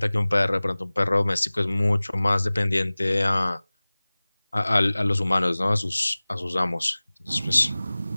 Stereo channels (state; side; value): inverted; both; correlation -0.99